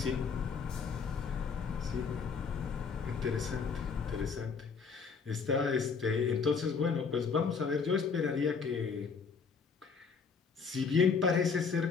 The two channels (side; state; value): right; quieter; 5.5 dB